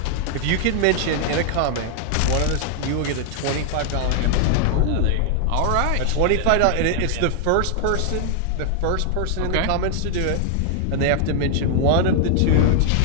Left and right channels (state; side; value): different; both; correlation 0.00